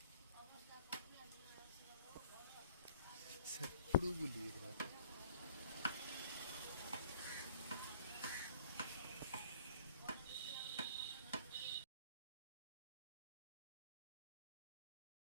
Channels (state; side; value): inverted; both; correlation -0.54